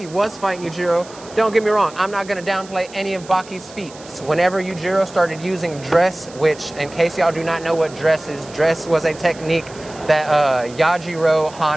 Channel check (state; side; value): noise; right; hiss, 20 dB below the sound